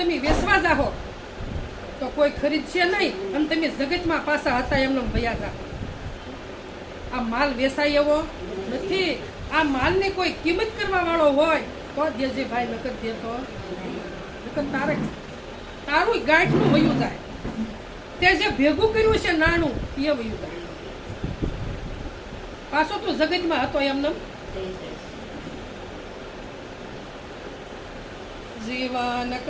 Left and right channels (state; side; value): identical; both; correlation 1.00